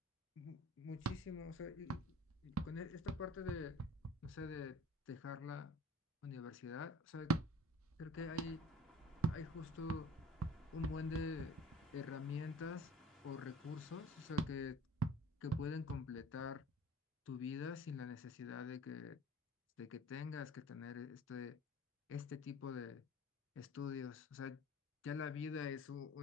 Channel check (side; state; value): both; normal; correlation 0.46